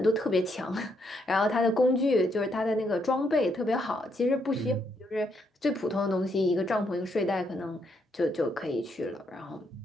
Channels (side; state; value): both; normal; correlation 0.75